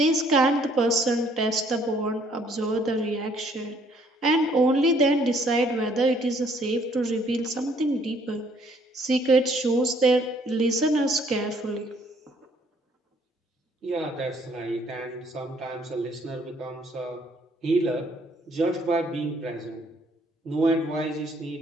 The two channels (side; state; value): both; normal; correlation 0.63